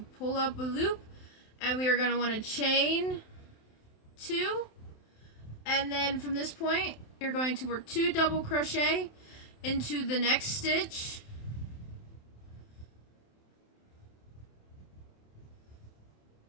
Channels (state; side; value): late; right; 27 ms